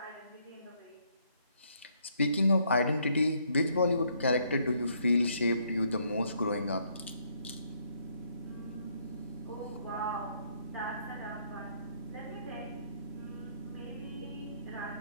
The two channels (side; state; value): both; inverted; correlation -0.70